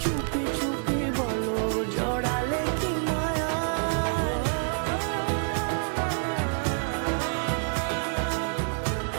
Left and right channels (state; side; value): silent; left; digital silence